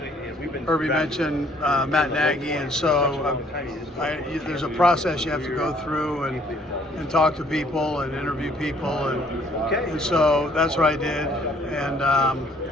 mentioned Matt Nagy, and so there's a process you have to go through and talk to people and interview people, and so that's what I did. And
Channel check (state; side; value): normal; both; correlation 0.61